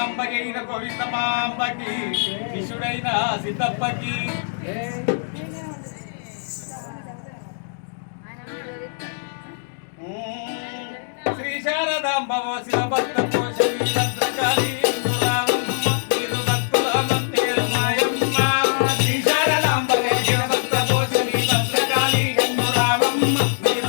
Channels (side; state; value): right; silent; digital silence